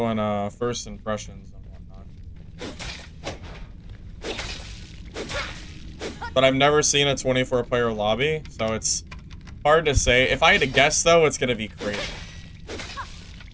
first impressions and whatnot. But I've never seen a 24-player lobby, so it's hard to say. If I had to guess, though, it's gonna be crazy.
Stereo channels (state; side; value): identical; both; correlation 1.00